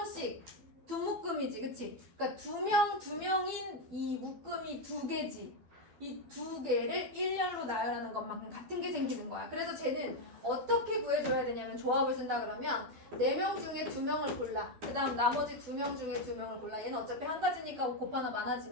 두 묶음이지, 그치? 그러니까 2명인 이 묶음이 2개지. 이 2개를 일렬로 나열하는 것만큼 같은 게 생기는 거야. 그래서 쟤는 어떻게 구해줘야 되냐면 조합을 쓴다 그러면 4명 중에 2명을 골라. 그 다음 나머지 2명 중에 2명을 골라. 얘는 어차피 한 가지니까 곱하나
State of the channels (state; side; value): late; left; 12 ms